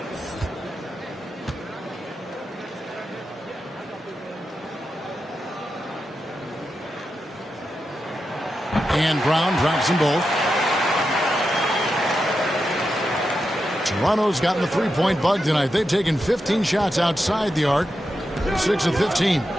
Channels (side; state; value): both; normal; correlation 0.88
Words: And Brown drops them both. Toronto's gotten the three-point bug tonight. They've taken 15 shots outside the arc. They're 6 of 15.